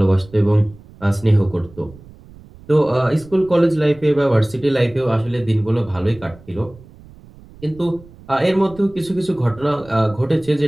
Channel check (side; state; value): right; noise; rumble, 22 dB below the sound